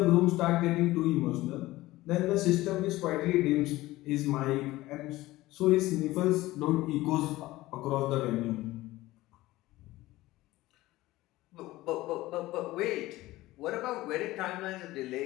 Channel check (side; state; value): right; quieter; 17.8 dB